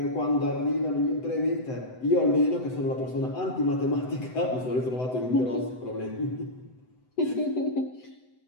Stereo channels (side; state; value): right; late; 7.9 ms